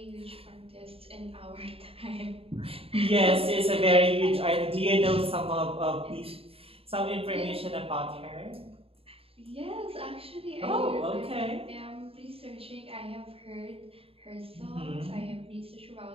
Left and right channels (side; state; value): left; late; 0.28 ms